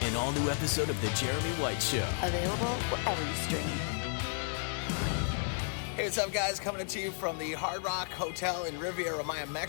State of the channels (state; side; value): silent; right; digital silence